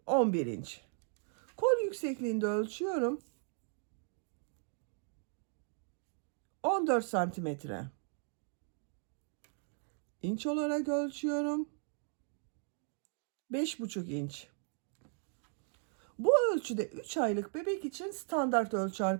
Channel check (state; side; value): silent; left; 53 dB below the other